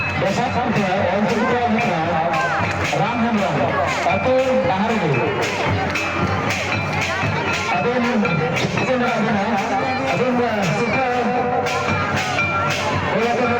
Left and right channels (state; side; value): noise; left; rumble, 25 dB below the sound